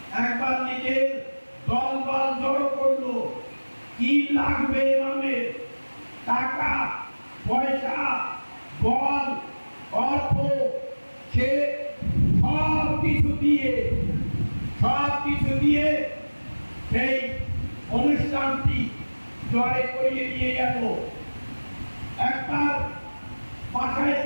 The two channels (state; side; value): inverted; both; correlation -1.00